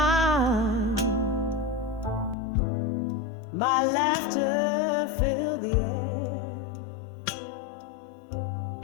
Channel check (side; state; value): right; drops out; at 2.4 s